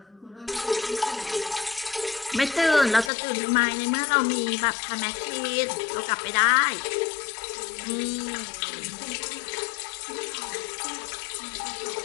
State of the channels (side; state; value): right; drops out; at 3.1 s